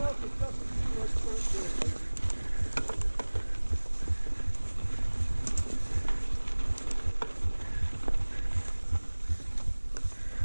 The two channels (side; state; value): both; inverted; correlation -1.00